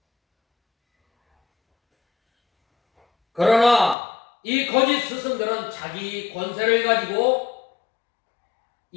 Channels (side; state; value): right; drops out; at 4.0 s